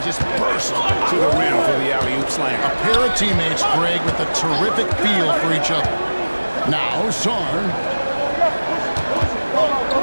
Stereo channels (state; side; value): inverted; both; correlation -1.00